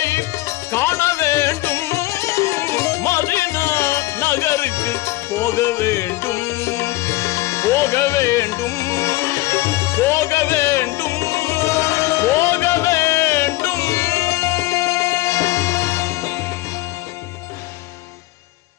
காண வேண்டும் மதீனா நகருக்கு போக வேண்டும் போக வேண்டும் போக வேண்டும் போக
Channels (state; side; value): quieter; right; 18.5 dB